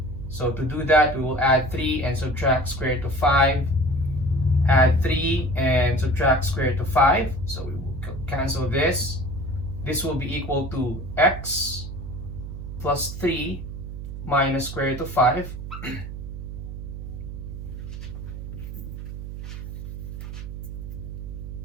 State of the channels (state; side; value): noise; right; hum, 8 dB below the sound